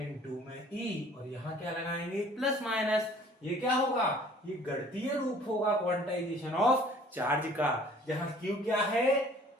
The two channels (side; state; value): both; normal; correlation 0.53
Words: में E और यहां क्या लगाएंगे? Plus minus. ये क्या होगा? ये गणितीय रूप होगा क्वांटाइजेशन ऑफ चार्ज का, जहां Q क्या है?